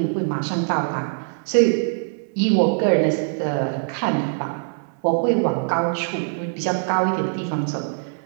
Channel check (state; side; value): silent; left; 64 dB below the other